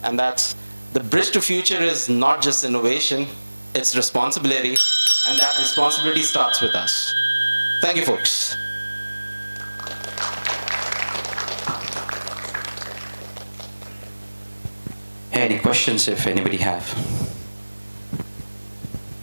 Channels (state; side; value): inverted; both; correlation -1.00